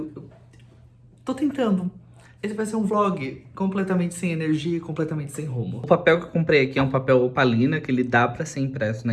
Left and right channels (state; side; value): identical; both; correlation 1.00